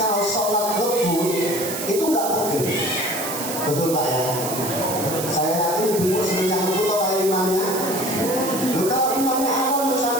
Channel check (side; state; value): right; noise; hiss, 6 dB below the sound